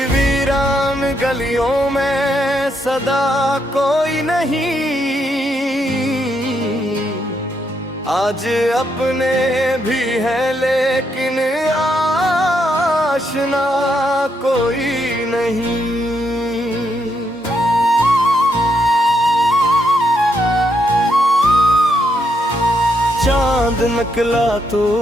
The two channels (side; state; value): both; normal; correlation 0.78